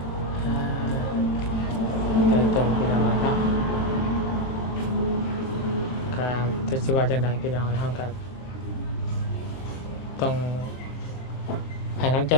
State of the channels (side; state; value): right; late; 23 ms